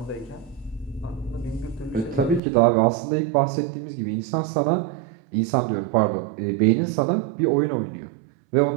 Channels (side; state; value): left; drops out; at 2.4 s